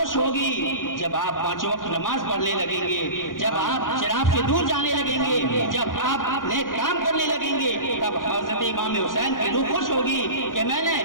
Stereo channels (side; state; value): right; late; 0.89 ms